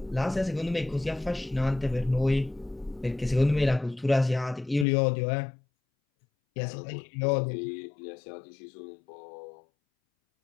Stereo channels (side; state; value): right; drops out; at 4.9 s